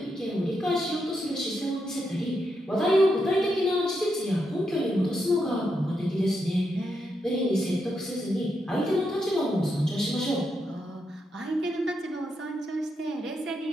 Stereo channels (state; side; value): normal; both; correlation 0.83